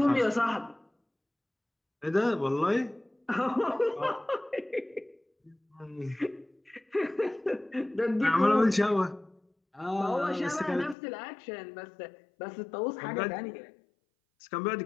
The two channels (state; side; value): drops out; right; at 11.0 s